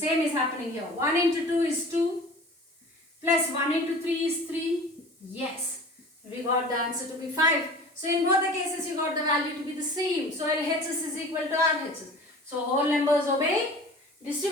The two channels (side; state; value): both; normal; correlation 0.41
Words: is happening here. 1 into 2 is 2. Plus 1 into 3 is 3. Yes. We got the answer to be 5. So in both the cases, you got the value to be the same. So LHS is equal to RHS. So whole numbers obey